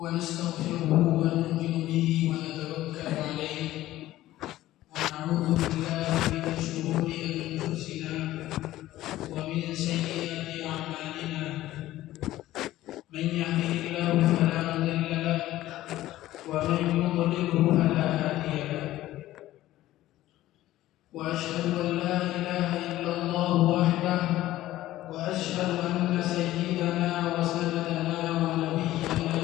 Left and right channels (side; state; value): right; quieter; 15.2 dB